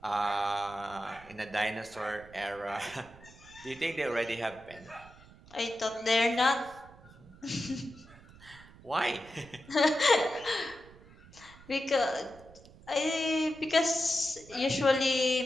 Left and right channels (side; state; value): right; noise; rumble, 22 dB below the sound